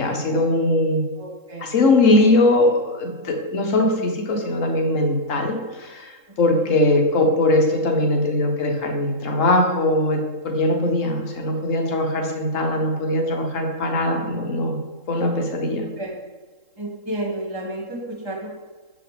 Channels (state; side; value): late; right; 3.7 ms